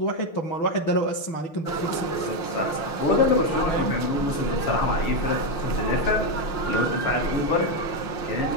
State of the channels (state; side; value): late; right; 6.4 ms